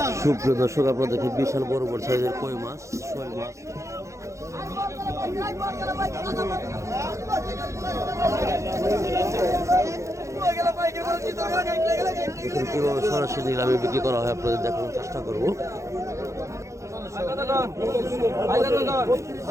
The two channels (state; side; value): late; left; 0.15 ms